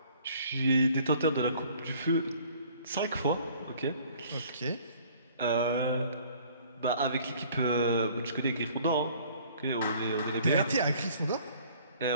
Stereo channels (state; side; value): inverted; both; correlation -0.55